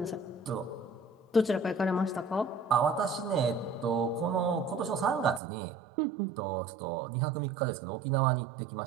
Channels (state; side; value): drops out; left; at 5.4 s